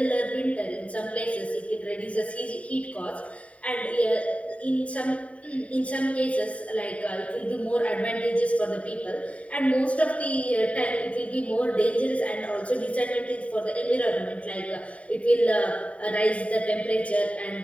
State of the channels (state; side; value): late; right; 0.066 ms